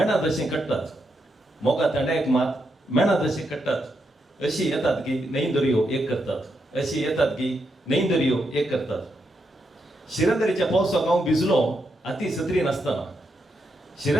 जशें कट्टात मोगा थंडायक मात मेणा जशें कट्टात अशी येतात की न्हंय दर्यो एक करतात अशी येतात की न्हंय दर्यो एक करतात शिरंदरेच्या पावसाक हांव भिजलो अती सत्री नासतना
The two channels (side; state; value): both; normal; correlation 0.82